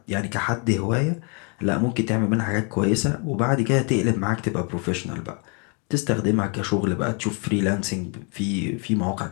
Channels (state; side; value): quieter; right; 36.3 dB